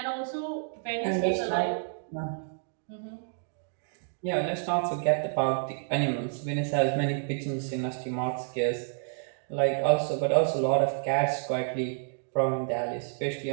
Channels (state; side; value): silent; left; digital silence